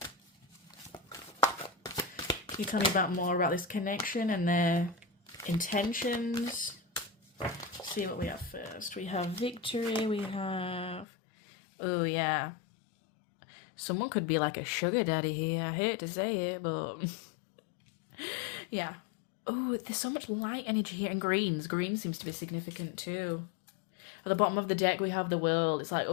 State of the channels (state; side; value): drops out; right; at 11.1 s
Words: Can you tell me more about this connection and their intentions? Let's see what we have first. We have victory, we have... Oh, yeah. Someone could be like a sugar daddy here. I hate to say it, but... yeah. Oh, there's so much light energy here. And greens. Green seems to be significant too. At the bottom of the deck, we have the world. It's like,